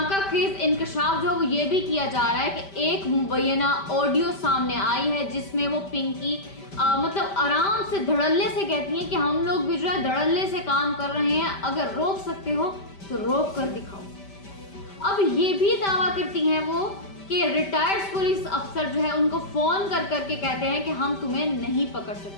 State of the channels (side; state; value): right; late; 5.1 ms